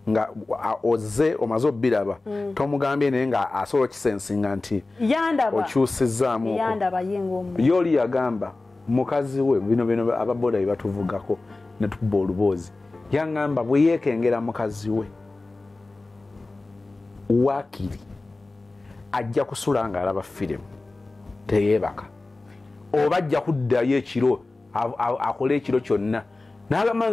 oze omaze obbiraba tomugambye naye nga asobola kisensinga nti okyusizzaamu yoli yagamba mukazi we bino ababoda bye batuvugako ne tukuba oluboozi yangamba bwe yeekengera mukazi we waakiri ajja kusula nga alaba firimu teyeebaka oba ajja kuddayo ekiro akole ekiro kyonna naye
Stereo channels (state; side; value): quieter; right; 3.2 dB